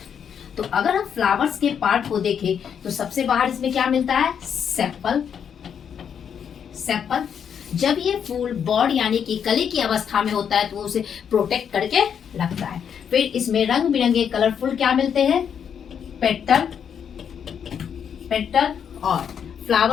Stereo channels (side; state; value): right; quieter; 7.9 dB